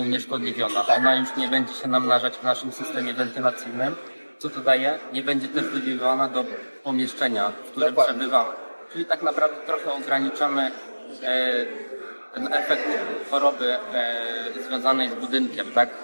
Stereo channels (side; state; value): both; inverted; correlation -1.00